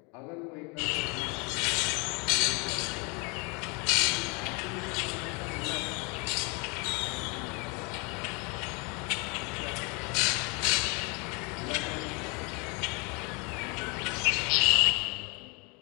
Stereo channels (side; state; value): right; quieter; 31.3 dB